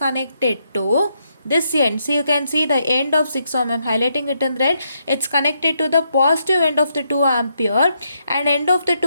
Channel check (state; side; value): inverted; both; correlation -0.78